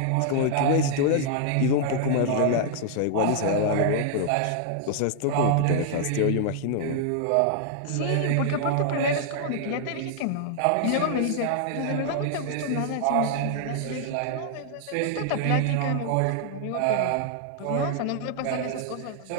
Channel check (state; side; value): different; both; correlation -0.01